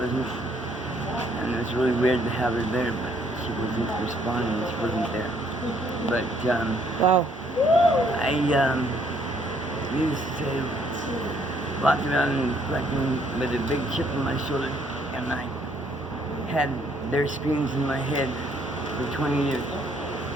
and it was really weird to have her there, but she wasn't responding, she wasn't there. But wow. used to walk around fucking with a big chip on my shoulder, and I had their screams in my head for 20 years.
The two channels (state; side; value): normal; both; correlation 0.66